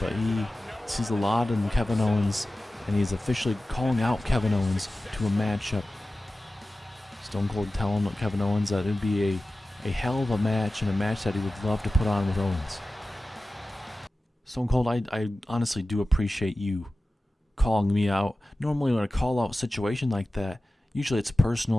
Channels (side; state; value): both; normal; correlation 0.95